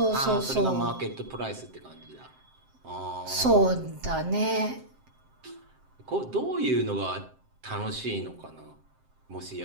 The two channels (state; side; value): late; left; 7.6 ms